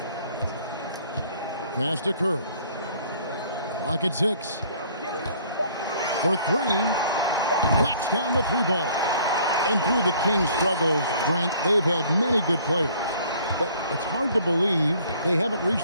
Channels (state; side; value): inverted; both; correlation -0.56